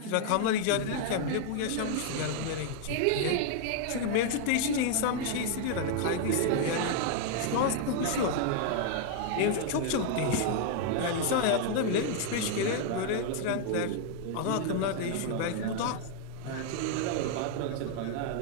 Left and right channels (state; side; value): different; both; correlation 0.00